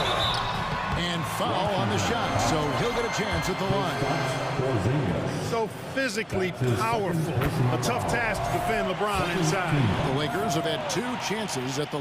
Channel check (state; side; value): identical; both; correlation 1.00